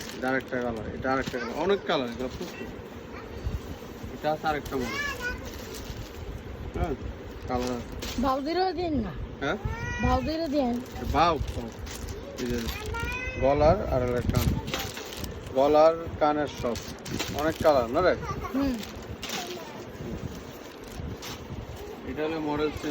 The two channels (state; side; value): identical; both; correlation 1.00